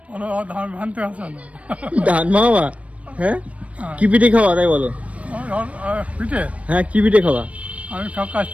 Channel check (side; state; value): left; late; 0.065 ms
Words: ধান ভানতে আসে না। ধান মামা? হ্যাঁ, কি পিঠে খাওয়া তাই বলো? পিঠে হ্যাঁ, কি পিঠে খাওয়া? আমি সব